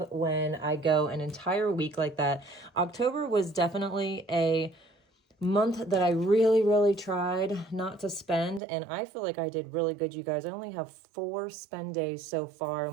when I go an entire week like that. October was definitely a month that I really tried not to spend, and I feel like I did really good, you guys. I only have 4 spend days so far,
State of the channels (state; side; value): drops out; left; at 8.6 s